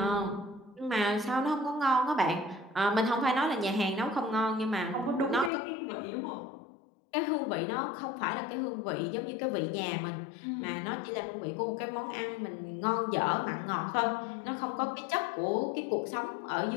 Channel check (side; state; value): right; drops out; at 5.5 s